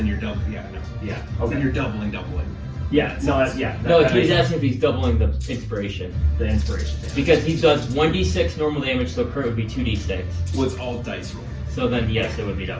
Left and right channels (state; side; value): identical; both; correlation 1.00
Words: you're double. Yeah, no. Yeah. Then Okay. you're doubling. Yeah. No. That's No, that he's makes asking if he's doubling the inspiration. the inspiration. Because he does 1d6 normal damage, so crit would be 2d6. Well, it's all dice roll. So then, yes, it would be